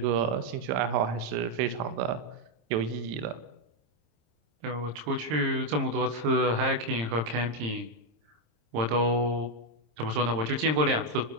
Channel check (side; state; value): left; late; 26 ms